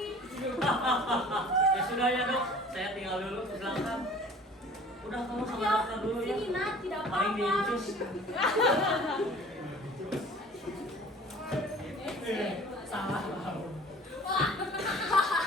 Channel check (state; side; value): normal; both; correlation 0.47